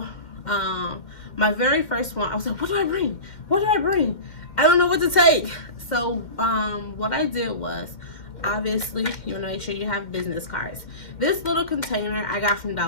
My very first one, I was like, what do I bring? What do I bring? I don't know what to take. So what I did was, obviously, you want to make sure you have business cards. This little container I got from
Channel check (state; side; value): late; right; 2.1 ms